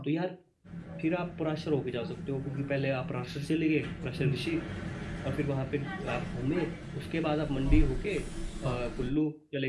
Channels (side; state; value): both; identical; correlation 1.00